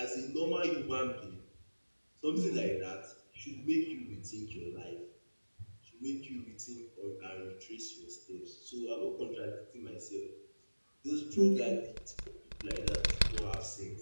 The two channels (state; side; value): inverted; both; correlation -1.00